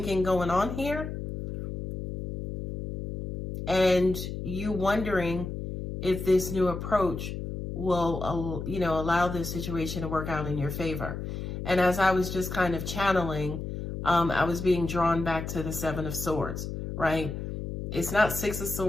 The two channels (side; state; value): left; noise; hum, 6 dB below the sound